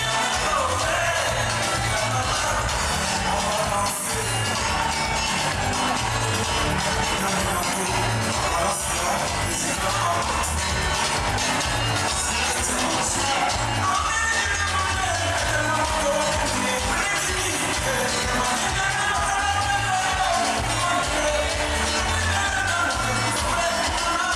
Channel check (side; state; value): both; identical; correlation 1.00